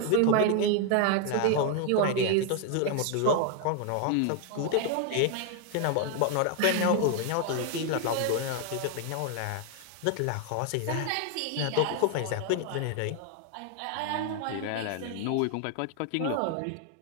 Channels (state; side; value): different; both; correlation 0.01